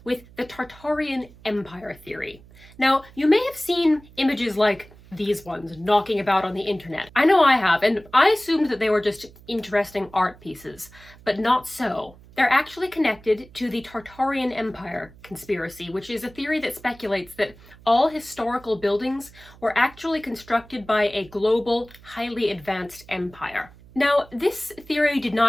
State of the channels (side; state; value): right; noise; hum, 23 dB below the sound